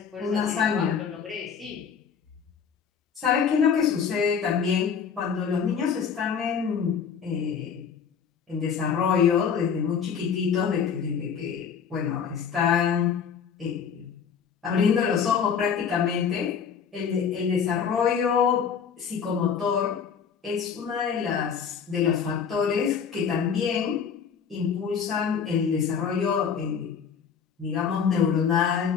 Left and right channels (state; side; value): quieter; right; 6.9 dB